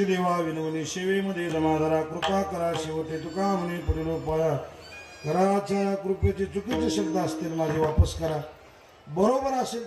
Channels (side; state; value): both; identical; correlation 1.00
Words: देवा विनवणी सेवेमध्ये जमाधारा कृपा करा शेवटे तुका म्हणे पुढील पाया घराच्या कृपेचे चुकीचे शब्द असतील माझे वापस करा बरोबर